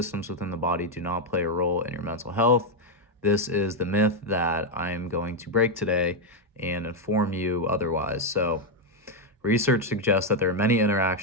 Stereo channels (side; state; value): both; normal; correlation 0.02